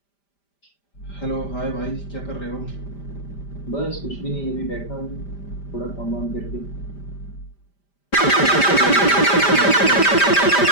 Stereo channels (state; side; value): late; right; 5.0 ms